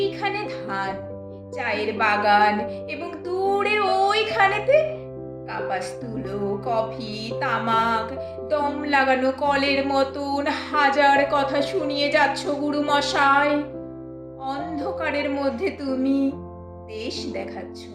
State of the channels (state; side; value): identical; both; correlation 1.00